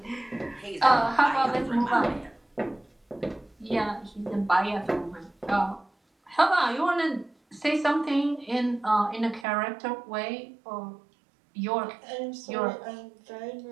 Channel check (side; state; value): left; drops out; at 9.5 s